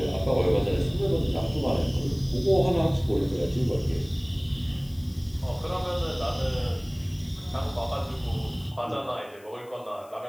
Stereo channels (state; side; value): noise; left; hiss, 27 dB below the sound